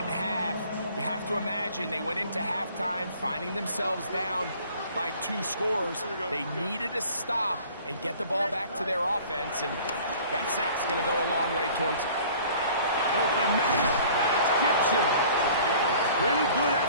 half. You have to imagine they went into halftime finding themselves down by 2 scores. They needed to stop and get the ball back to their offense, and that sack's going to go a long way towards it. Open man. That's Gibson. Pretty good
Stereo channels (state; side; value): inverted; both; correlation -0.50